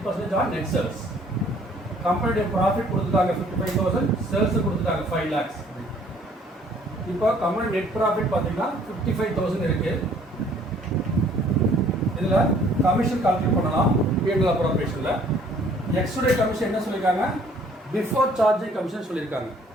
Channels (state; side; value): normal; both; correlation 0.58